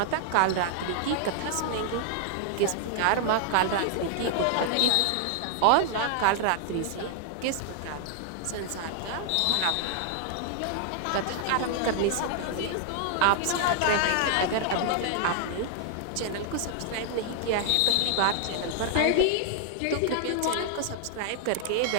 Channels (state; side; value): different; both; correlation 0.00